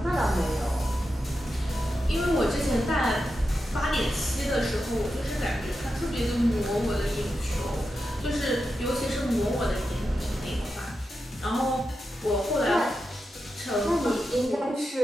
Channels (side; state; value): both; normal; correlation 0.89